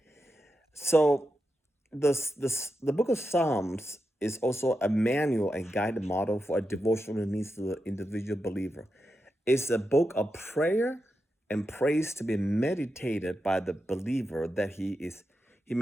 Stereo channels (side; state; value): both; normal; correlation 0.88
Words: So the book of Psalms is also a manual and guided model for a devotional needs to the individual believer. It's a book of prayer and praise to be meditated by the believer that he